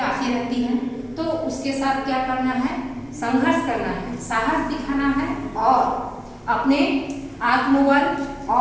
आती रहती हैं, तो उसके साथ क्या करना है? संघर्ष करना है, साहस दिखाना है और अपने आत्मबल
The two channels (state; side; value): identical; both; correlation 1.00